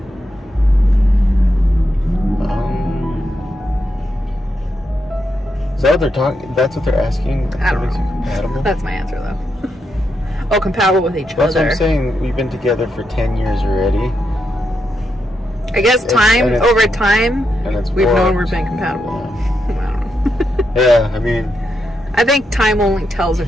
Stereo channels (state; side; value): normal; both; correlation 0.83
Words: Is that what they're talking? That's what they're asking? I don't What makes you know. compatible? That's my answer, though. Oh, compatible with each That's other. what I'm saying. We've been together for 10 years already. I guess over time, we've known we're being compatible. Yeah. I don't know. Yeah, I mean, I think time only tells